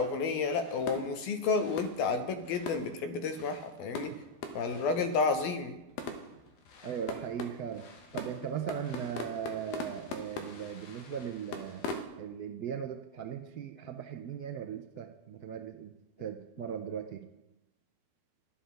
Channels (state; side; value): late; right; 12 ms